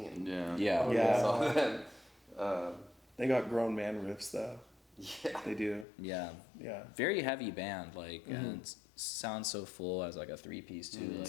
Yeah. So then, they got grown man riffs though. Yeah, they do. Yeah. Very heavy band, like, and it sounds so full as like a 3-piece too. Like,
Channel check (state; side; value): drops out; right; at 5.9 s